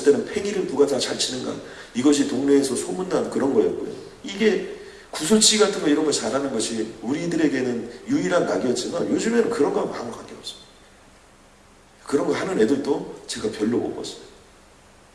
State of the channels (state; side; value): identical; both; correlation 1.00